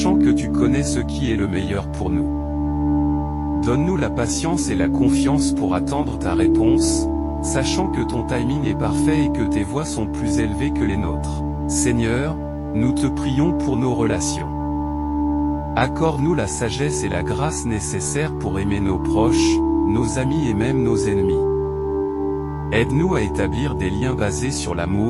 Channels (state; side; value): identical; both; correlation 1.00